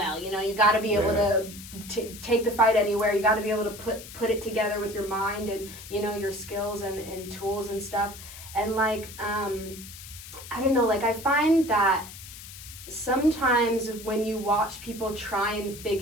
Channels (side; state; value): left; noise; hiss, 14 dB below the sound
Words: You know, you got to be able to take the fight anywhere. You got to be able to put it together with your mind and, you know, your skills and tools and stuff. And like, I don't know, like I find that sometimes when you watch people try and